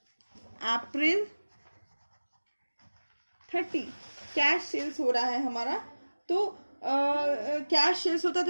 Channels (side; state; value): both; inverted; correlation -1.00